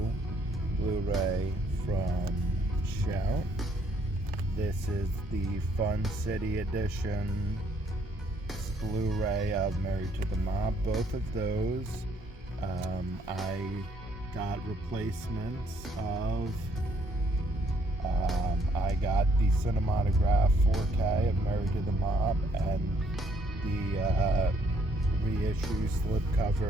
Blu-ray from Shout. This is the Fun City Edition Blu-ray of Married to the Mob. Both of those I got replacements of. I got the Cinematograph 4K of Married to the Mob and the reissue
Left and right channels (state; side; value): normal; both; correlation 0.67